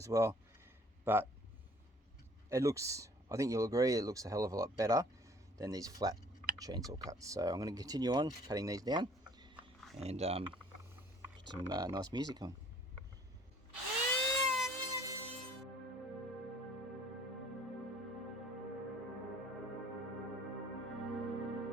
well. But it looks I think you'll agree it looks a hell of a lot better than these flat chainsaw cuts. So I'm going to continue on cutting these down and put some nice music on.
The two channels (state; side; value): normal; both; correlation 0.55